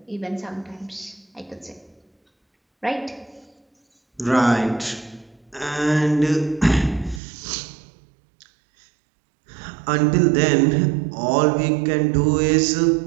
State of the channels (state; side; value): drops out; left; at 7.2 s